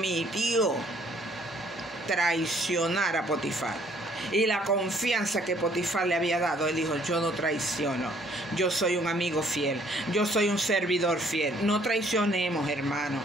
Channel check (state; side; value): normal; both; correlation 0.62